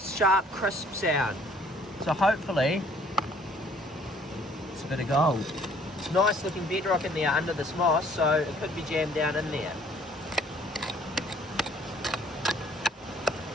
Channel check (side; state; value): both; normal; correlation 0.59